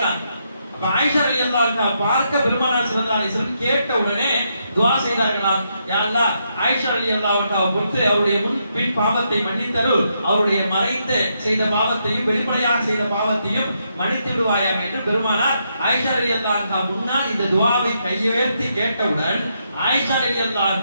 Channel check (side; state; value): both; inverted; correlation -0.79